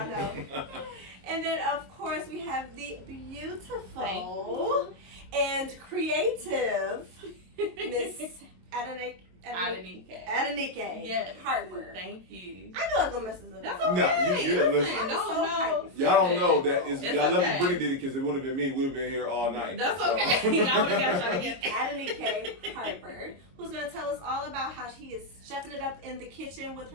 know. And then, of course, we have the beautiful and creative Miss Adenike Harper. Thank you. I know I'm gonna mess this up. That's okay. No, you good. Listen. No. Y'all don't know that is. It's Y'all love okay. Brittany did it because it would have been me. We'd have been here all night. That's So. okay. I would have got trying to get Adenike Harper, who's gonna tell us all about how she is chefing it up in the kitchen with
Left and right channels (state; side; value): late; left; 22 ms